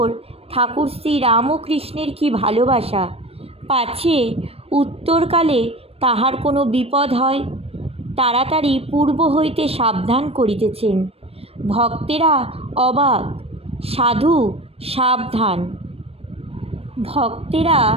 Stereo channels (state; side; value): late; left; 0.28 ms